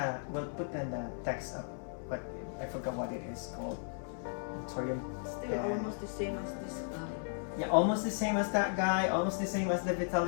We'll put in the text up, but I forgot what it is called. Anthurium. Still almost the same as this guy. Yeah, almost the same as that guy. Almost the same as the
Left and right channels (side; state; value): right; silent; 54 dB below the other